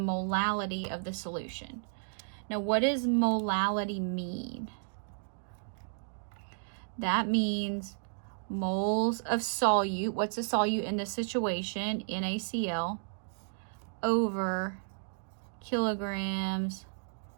of the solution. Now, what does molality mean? That means moles of solute. What's a solute in this situation? NaCl over kilograms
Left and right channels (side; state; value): left; silent; digital silence